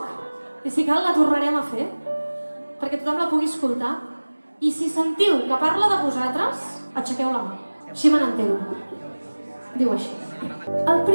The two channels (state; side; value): inverted; both; correlation -1.00